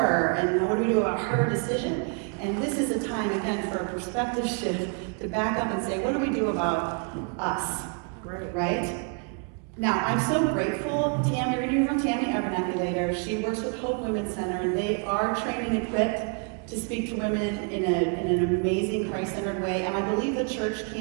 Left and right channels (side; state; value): left; quieter; 36.0 dB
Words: And what do we do about her decision? And this is a time, again, for a perspective shift to back up and say, what do we do about us? Right? Now, I'm so grateful. Tammy, we're hearing from Tammy Abernathy later. She works with Hope Women's Center, and they are trained and equipped to speak to women in an amazing Christ-centered way. And I believe the church